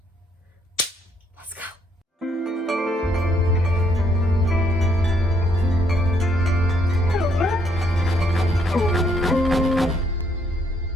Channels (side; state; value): both; normal; correlation 0.70